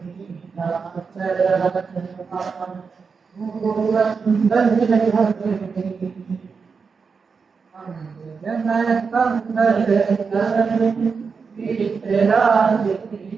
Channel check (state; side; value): quieter; left; 5.3 dB